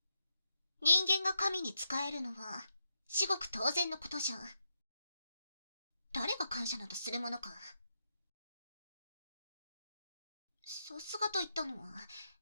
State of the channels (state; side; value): inverted; both; correlation -0.84